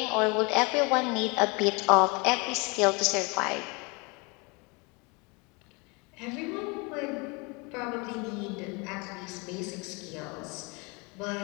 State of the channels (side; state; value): right; quieter; 29.4 dB